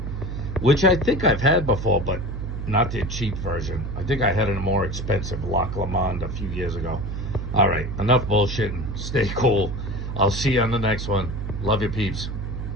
which I think I've had before, but not the cheap version. I think I had a more expensive Lac Le Monde a few years ago. All right, enough bullshitting. Stay cool. I'll see you on the next one. Love you, peeps.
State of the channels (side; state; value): right; noise; hum, 5 dB below the sound